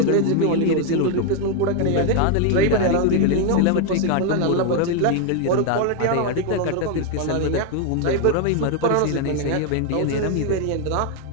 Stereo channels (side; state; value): both; different; correlation 0.01